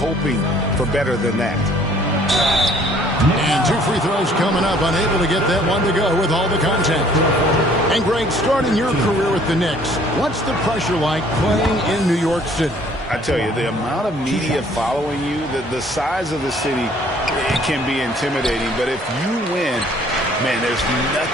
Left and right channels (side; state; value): both; normal; correlation 0.58